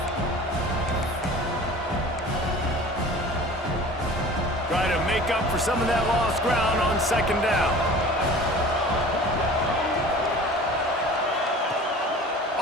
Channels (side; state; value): both; normal; correlation 0.42